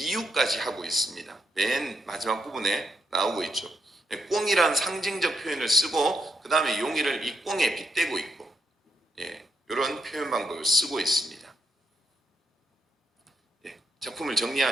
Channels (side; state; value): both; normal; correlation 0.79